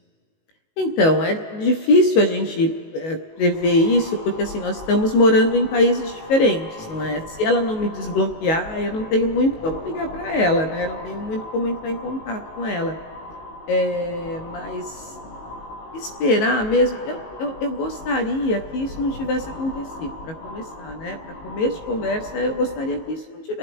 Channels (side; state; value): right; late; 19 ms